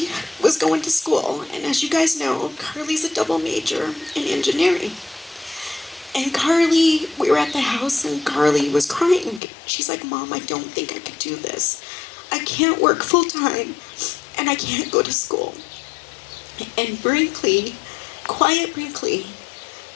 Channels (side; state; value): right; drops out; at 9.4 s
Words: was going to school, and as you guys know, Carly's a double major in engineering. And Carly, we were at the house and Carly was crying. She's like, Mom, I don't think I could do this. I can't work full time and I can't go to school. And Brinkley, quiet Brinkley,